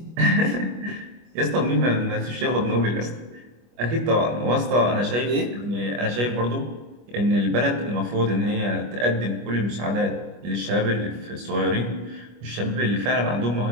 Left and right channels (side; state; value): left; late; 25 ms